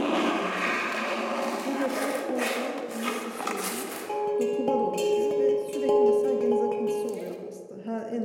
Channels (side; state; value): both; identical; correlation 1.00